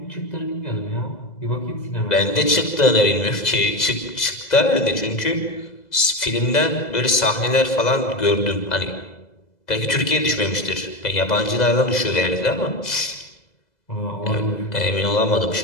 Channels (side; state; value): right; late; 2.0 ms